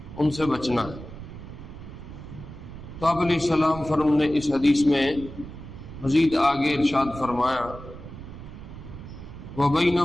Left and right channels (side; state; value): right; noise; rumble, 13 dB below the sound